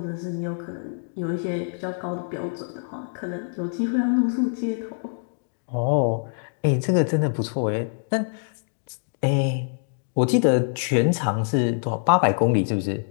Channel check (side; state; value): right; silent; digital silence